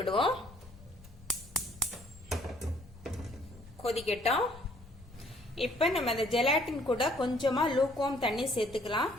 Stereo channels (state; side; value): noise; left; rumble, 21 dB below the sound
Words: கொதிக்கட்டும். இப்ப நம்ம அந்த ஜெலாட்டின் கூட கொஞ்சமா லூக்வார்ம் தண்ணி சேர்த்துக்கலாம்.